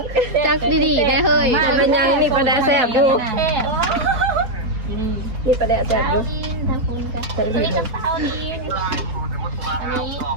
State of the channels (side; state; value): left; late; 4.6 ms